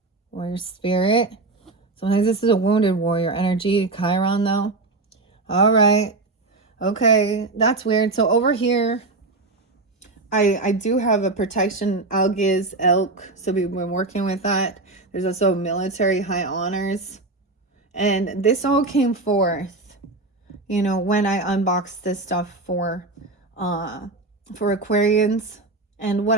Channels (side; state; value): left; quieter; 3.3 dB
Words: spirit. Sometimes this is a wounded warrior energy. Chiron, though. All right. Okay, that's weird. So over here, I do have a protection, Algiz, elk. So we've been working with that. There's also military high honors. And this all came forth, you know, when I unboxed this stuff for Aquarians. And what